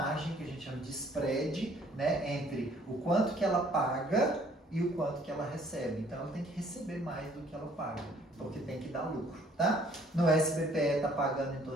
que a gente chama de spread, né, entre o quanto que ela paga e o quanto que ela recebe. Então ela tem que receber mais do que ela paga, porque tem que dar lucro, tá? No SBPE está pagando em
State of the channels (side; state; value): both; normal; correlation 0.60